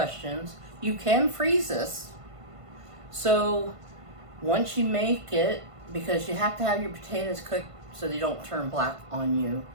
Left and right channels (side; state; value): left; late; 1.5 ms